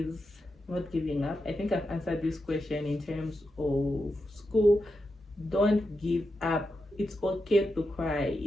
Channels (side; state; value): both; normal; correlation 0.88